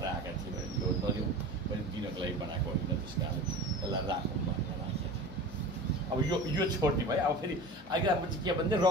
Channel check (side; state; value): left; noise; hum, 22 dB below the sound